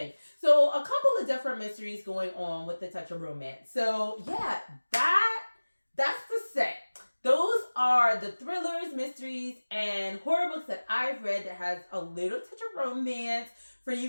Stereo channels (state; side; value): inverted; both; correlation -1.00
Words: So a couple of different mysteries going on with the touch of romance. So yeah, that's the set. Those are the thrillers, mysteries, and horror books that I've read that has a little touch of romance for you